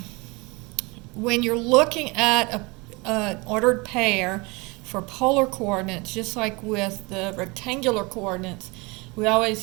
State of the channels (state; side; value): quieter; left; 26.6 dB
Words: when you're looking at an ordered pair for polar coordinates, just like with the rectangular coordinates, we